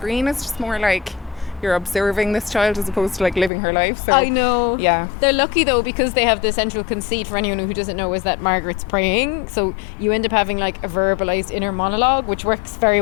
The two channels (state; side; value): drops out; right; at 3.5 s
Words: it's just more like you're observing this child as opposed to like living her life. So I know. Yeah. They're lucky though, because they have the central conceit, for anyone who doesn't know, is that Margaret's praying. So you end up having like a verbalized inner monologue, which works very